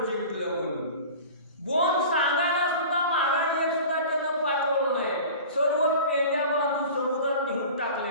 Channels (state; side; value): inverted; both; correlation -0.38